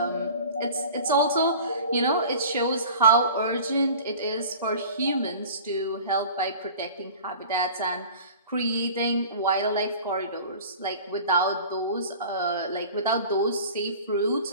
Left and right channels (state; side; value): inverted; both; correlation -0.41